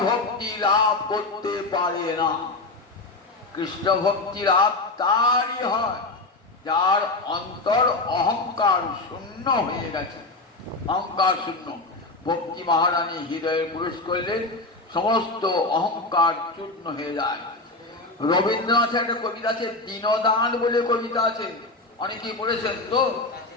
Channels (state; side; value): quieter; right; 3.2 dB